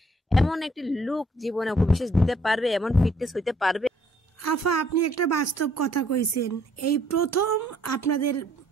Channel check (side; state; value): both; normal; correlation 0.64